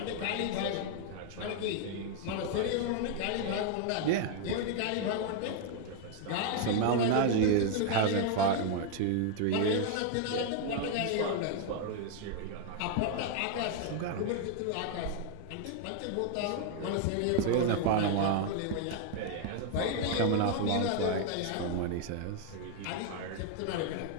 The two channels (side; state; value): both; different; correlation 0.00